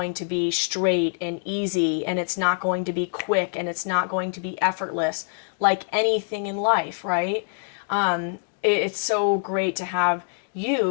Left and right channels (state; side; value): silent; right; digital silence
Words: to be straight and easy, and it's not going to be quick, and it's not going to be effortless like anything in life, right? It's so great to have